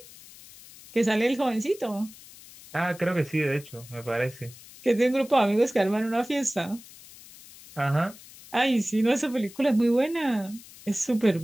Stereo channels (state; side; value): noise; left; hiss, 20 dB below the sound